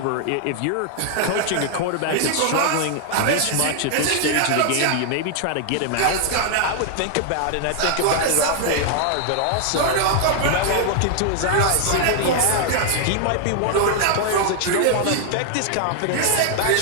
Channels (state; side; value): different; both; correlation 0.00